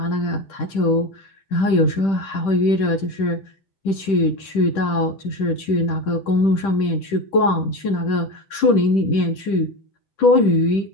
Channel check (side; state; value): right; late; 10 ms